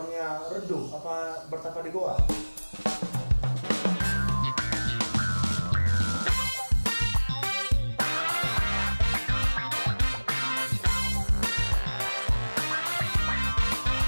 redup? Apa bertapa di goa?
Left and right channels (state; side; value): inverted; both; correlation -1.00